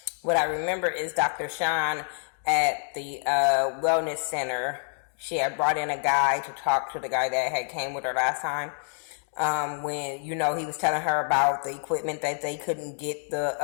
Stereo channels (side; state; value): right; silent; 56 dB below the other